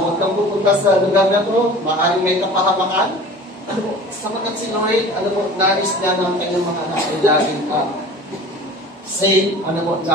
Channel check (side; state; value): both; normal; correlation 0.41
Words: kang pupunta sa lugar na to, maaaring may kapahamakan. Ano po, sapagat si Lord, ano po, nais niya ng kanyang mga anak ay laging safe, ano po,